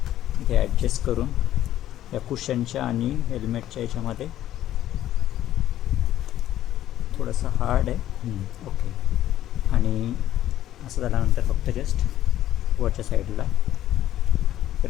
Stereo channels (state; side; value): quieter; right; 12.7 dB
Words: ॲडजस्ट करून या कुशनच्या आणि हेल्मेटच्या याच्यामध्ये थोडंसं हार्ड आहे ओके. आणि असं झाल्यानंतर फक्त जस्ट वरच्या साईडला